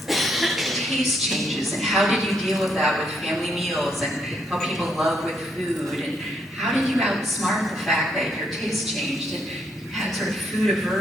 taste changes and how did you deal with that with family meals and how people love with food, and how did you outsmart the fact that your taste changed and you had sort of food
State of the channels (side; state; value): both; normal; correlation 0.75